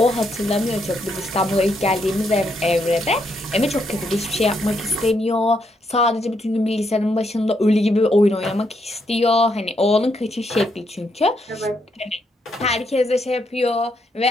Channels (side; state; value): both; normal; correlation 0.77